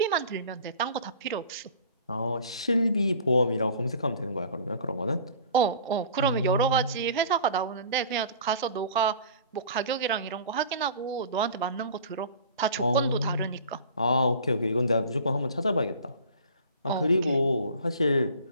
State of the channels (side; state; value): both; inverted; correlation -0.44